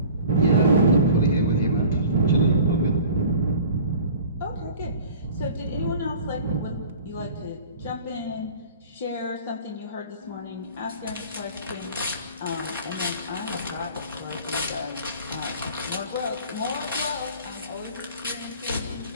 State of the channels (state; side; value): inverted; both; correlation -0.44